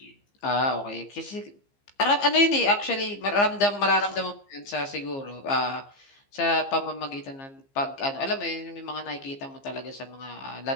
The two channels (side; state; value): right; late; 15 ms